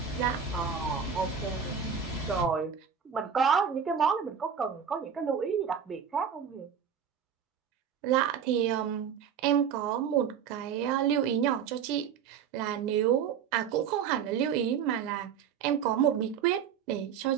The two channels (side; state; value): left; quieter; 7.6 dB